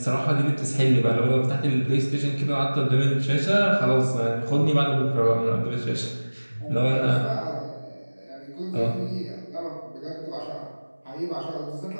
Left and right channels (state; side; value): inverted; both; correlation -1.00